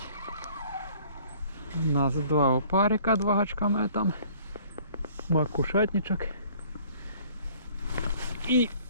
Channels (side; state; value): both; inverted; correlation -0.54